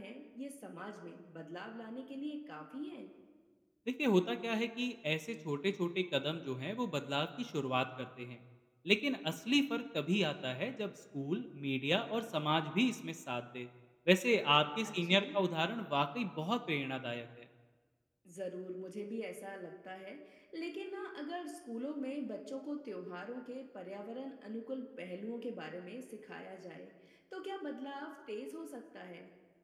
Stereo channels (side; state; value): both; identical; correlation 1.00